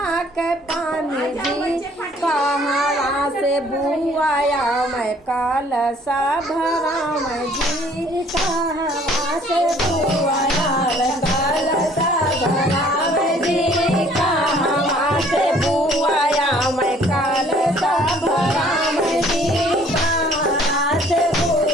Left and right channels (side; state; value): both; normal; correlation 0.57